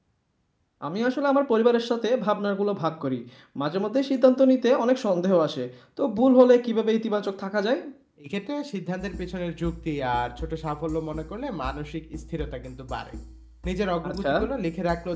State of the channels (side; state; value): both; identical; correlation 1.00